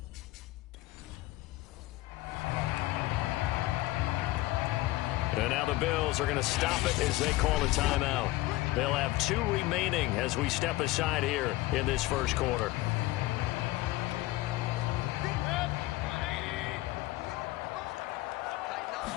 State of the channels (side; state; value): right; quieter; 18.2 dB